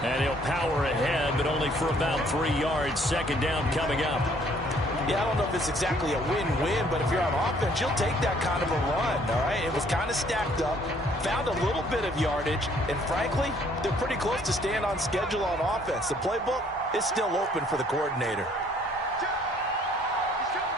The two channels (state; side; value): normal; both; correlation 0.62